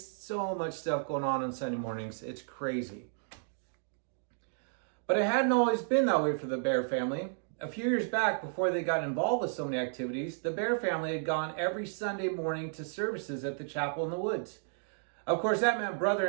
So much stuff going on Sunday mornings. It's crazy. But it hadn't always been that way for the Bear family. A few years back, before they got involved with so many activities, the Bear family had gone every Sunday morning to services at the chapel in the woods. Of course, that meant brother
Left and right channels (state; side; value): silent; left; digital silence